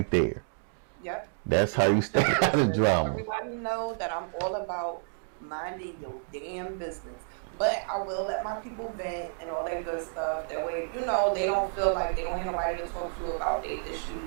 there. Yep. That's Just how you mind stay your out of business. drama. Everybody know that I'm all about minding your damn business. But I will let my people vent and all that good stuff. That way, they don't feel like they don't have nobody to talk to about their issues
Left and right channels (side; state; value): left; silent; digital silence